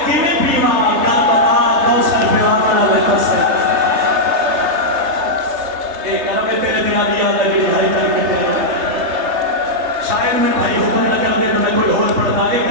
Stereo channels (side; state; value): left; late; 3.3 ms